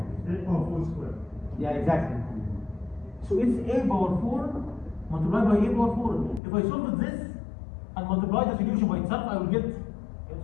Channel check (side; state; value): right; drops out; at 6.4 s